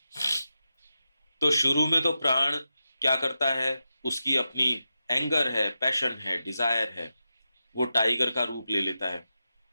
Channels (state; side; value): inverted; both; correlation -0.90